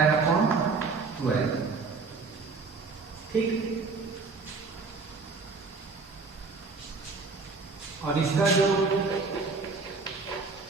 upon 12। ठीक, और इसका जो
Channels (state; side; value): quieter; left; 4.3 dB